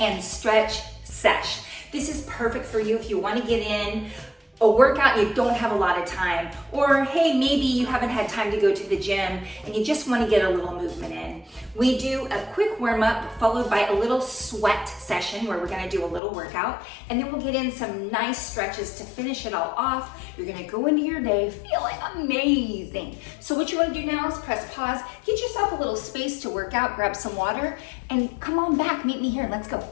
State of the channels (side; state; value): right; drops out; at 16.2 s